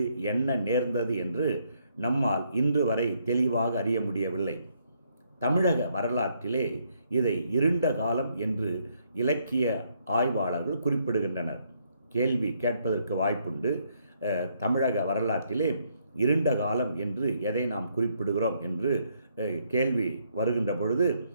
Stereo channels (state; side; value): inverted; both; correlation -0.73